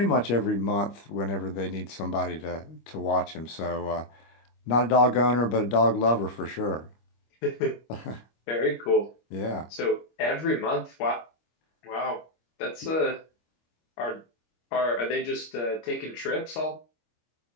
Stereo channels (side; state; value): right; late; 25 ms